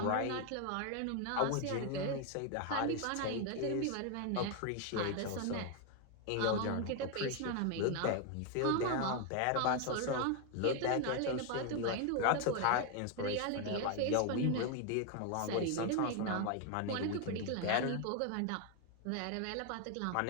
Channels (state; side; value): different; both; correlation 0.01